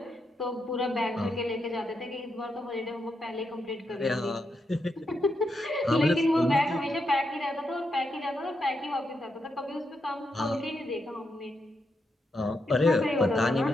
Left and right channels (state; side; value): normal; both; correlation 0.83